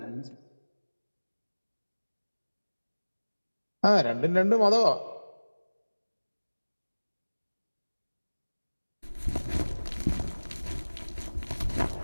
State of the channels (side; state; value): both; inverted; correlation -1.00